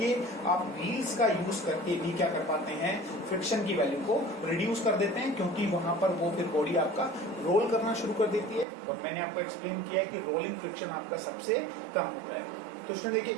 आप व्हील्स का यूज करके भी क्या कर पाते हैं, फ्रिक्शन की वैल्यू को रिड्यूस कर देते हैं, क्योंकि वहां पर वो फिर बॉडी आपका रोल करना शुरू कर देती है। और मैंने आपको एक्सप्लेन किया है कि रोलिंग फ्रिक्शन आपका सबसे कम होता है। तो उसमें देखिए,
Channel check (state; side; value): drops out; left; at 8.7 s